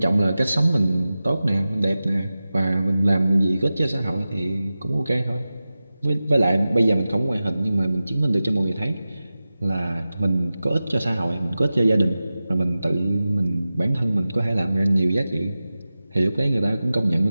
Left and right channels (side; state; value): both; inverted; correlation -0.95